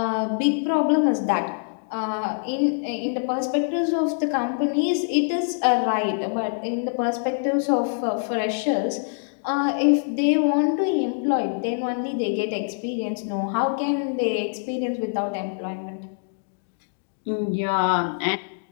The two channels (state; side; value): silent; right; digital silence